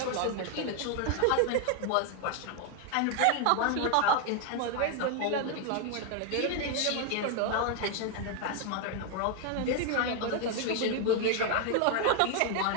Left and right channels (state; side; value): different; both; correlation 0.01